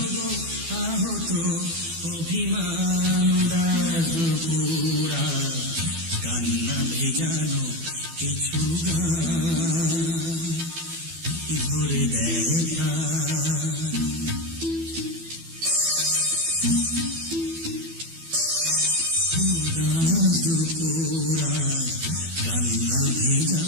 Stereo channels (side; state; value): left; late; 12 ms